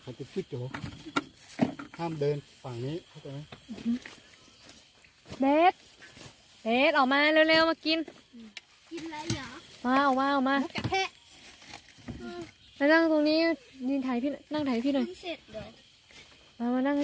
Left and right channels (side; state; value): both; identical; correlation 1.00